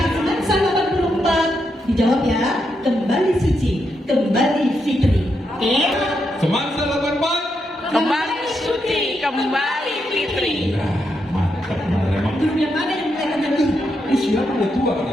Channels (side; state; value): both; normal; correlation 0.82